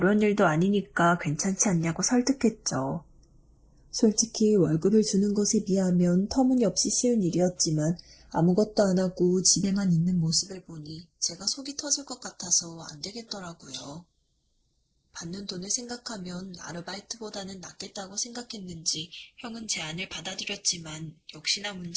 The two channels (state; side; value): identical; both; correlation 1.00